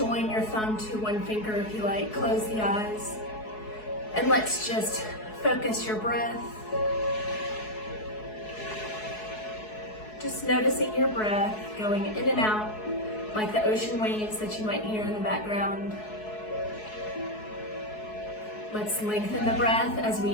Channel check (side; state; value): right; late; 4.7 ms